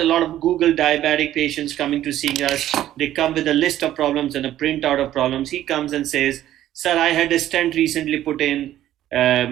lot of Google diabetic patients coming to see us. They come with a list of problems and a printout of problems. He comes and says, sir, I had a stent recently put in,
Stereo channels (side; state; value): left; quieter; 12.8 dB